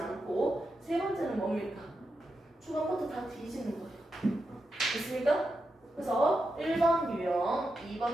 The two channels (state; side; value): normal; both; correlation 0.87